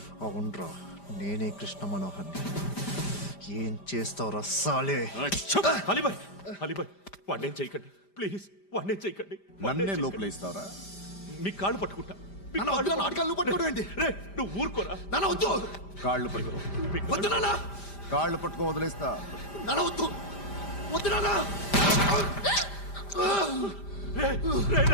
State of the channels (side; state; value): right; late; 5.0 ms